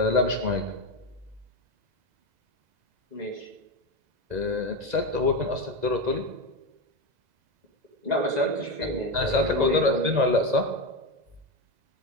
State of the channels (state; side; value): late; left; 2.0 ms